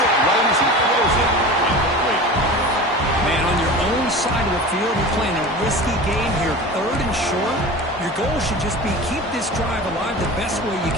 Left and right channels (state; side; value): normal; both; correlation 0.34